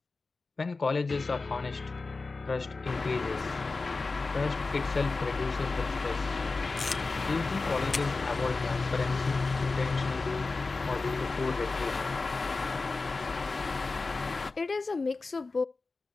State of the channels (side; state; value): right; quieter; 3.8 dB